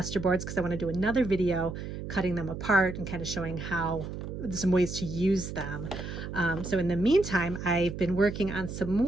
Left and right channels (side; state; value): right; noise; hum, 7 dB below the sound